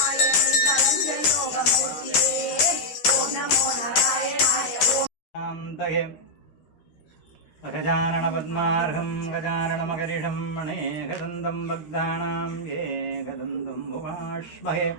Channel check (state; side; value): late; right; 13 ms